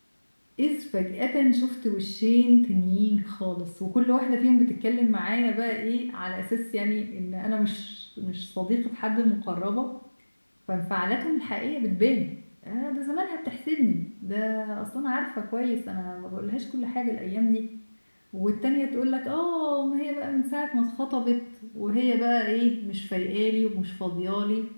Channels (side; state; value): both; inverted; correlation -1.00